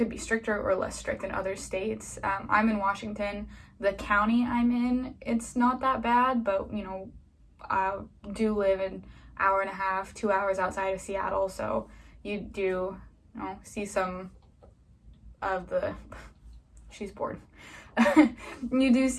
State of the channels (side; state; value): both; identical; correlation 1.00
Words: be stricter or less strict in other states. I'm in Washington. The county I'm in, it's not that bad, but, I do live an hour and a half, 2 hours outside of Seattle, so you do, see some of the, she's bored. You do